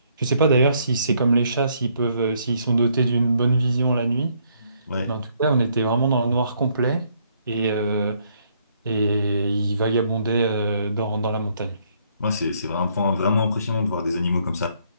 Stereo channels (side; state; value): both; inverted; correlation -0.69